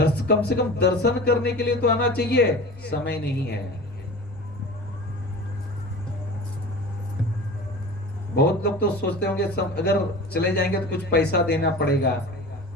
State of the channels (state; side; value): normal; both; correlation 0.36